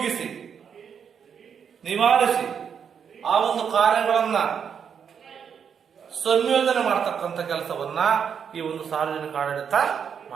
ನಿವಾರಿಸಿ ಆ ಒಂದು ಕಾರ್ಯಗಳನ್ನ ಸಂಯೋಜನೆ ಮಾಡತಕ್ಕಂಥ ಕೆಲಸವನ್ನ ಈ ಒಂದು ಸಾರ್ವಜನಿಕ ಆಡಳಿತ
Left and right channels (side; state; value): left; quieter; 7.3 dB